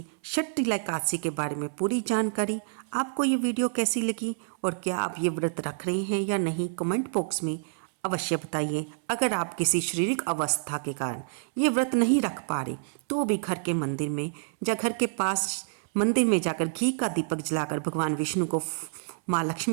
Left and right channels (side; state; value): left; silent; 59 dB below the other